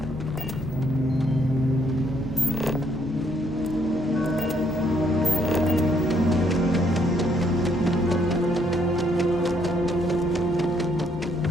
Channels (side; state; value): both; normal; correlation 0.70